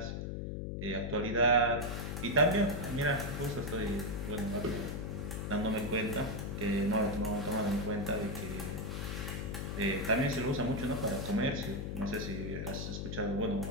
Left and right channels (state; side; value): noise; left; hum, 4 dB below the sound